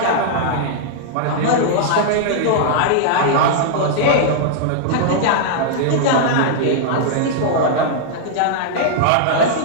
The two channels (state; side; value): different; both; correlation -0.01